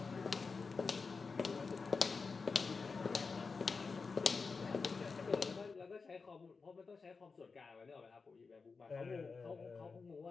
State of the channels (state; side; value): quieter; right; 4.7 dB